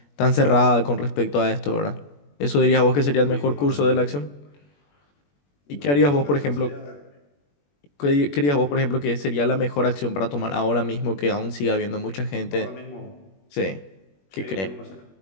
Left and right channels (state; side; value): late; right; 21 ms